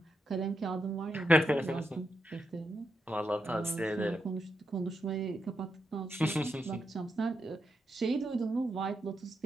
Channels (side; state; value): both; normal; correlation 0.84